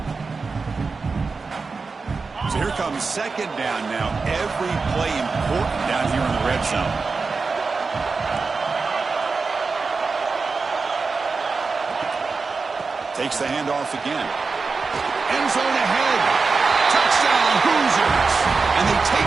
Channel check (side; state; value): left; quieter; 4.4 dB